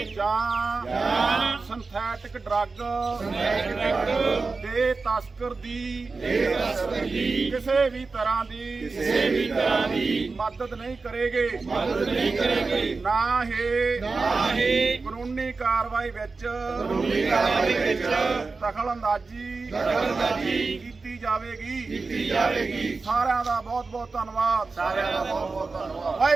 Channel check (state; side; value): quieter; left; 4.1 dB